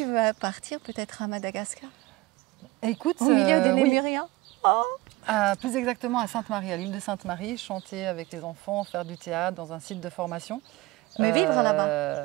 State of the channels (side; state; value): left; quieter; 20.7 dB